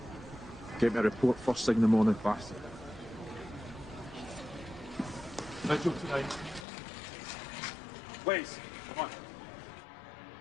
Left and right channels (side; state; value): right; drops out; at 6.7 s